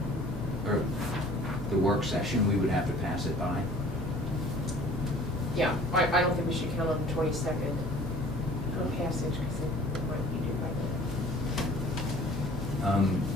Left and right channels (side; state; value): both; normal; correlation 0.49